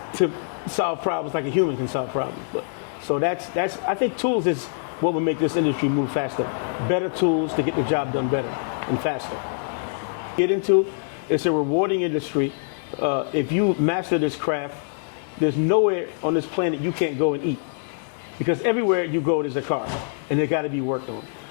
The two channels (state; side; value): silent; right; digital silence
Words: to solve problems like a human can solve problems. But so I think tools is what will make this industry move faster. Better tools to get the job done better and faster. It's a rewarding industry. If you master this craft, there's nowhere on this planet you can't go and eat, because everywhere you go there's a car, and it got to be worked on.